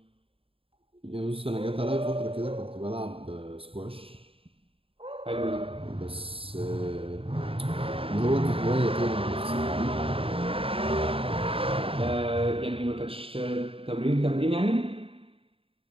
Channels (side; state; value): left; late; 0.27 ms